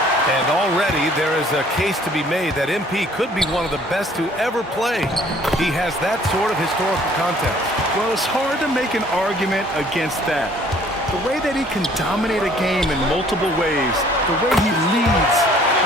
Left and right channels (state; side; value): normal; both; correlation 0.57